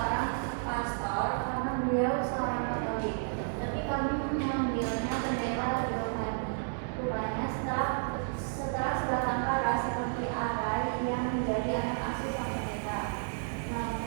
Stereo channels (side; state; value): left; silent; digital silence